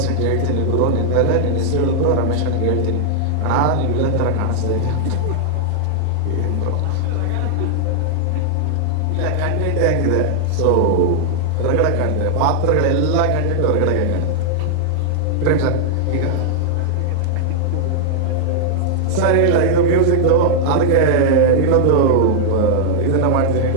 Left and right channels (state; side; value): different; both; correlation -0.01